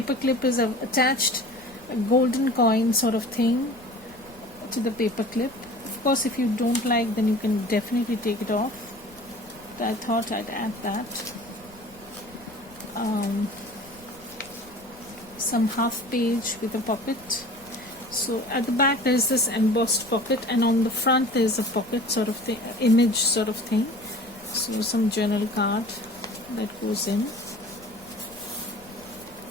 clip is I've attached a golden coin sort of thing to the paper clip. Of course, if you don't like, then you can definitely take it off, but I thought I'd add that. Some half page with a pocket. So at the back there is this embossed pocket, and on the front there is a pocket sort of thing, image sort of thing. So some journal card that goes in.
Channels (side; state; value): left; noise; rumble, 24 dB below the sound